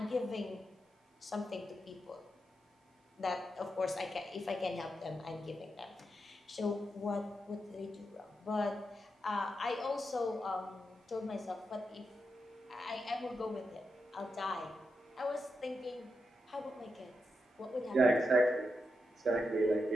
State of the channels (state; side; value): normal; both; correlation 0.86